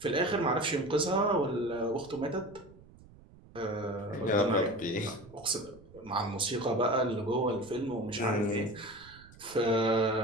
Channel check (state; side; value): noise; right; rumble, 22 dB below the sound